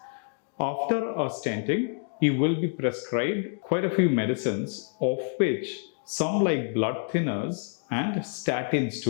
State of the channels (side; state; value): right; silent; digital silence